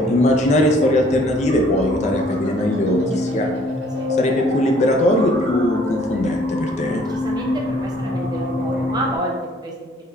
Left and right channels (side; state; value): both; normal; correlation 0.59